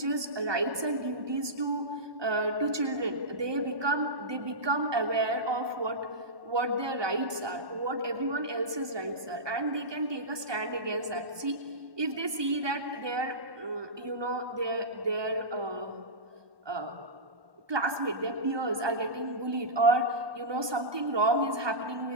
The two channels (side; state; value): left; late; 1.2 ms